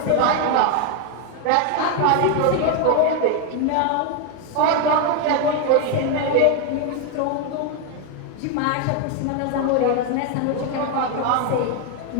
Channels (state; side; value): different; both; correlation 0.01